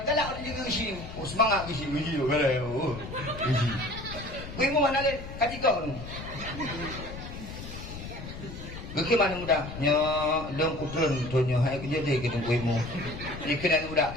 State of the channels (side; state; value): left; noise; rumble, 10 dB below the sound